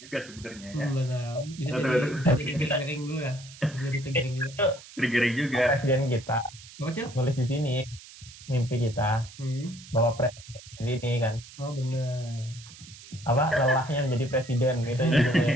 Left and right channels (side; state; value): right; noise; hiss, 18 dB below the sound